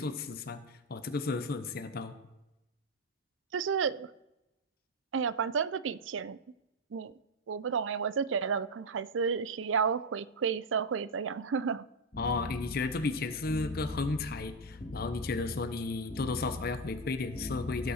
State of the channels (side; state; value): both; normal; correlation 0.05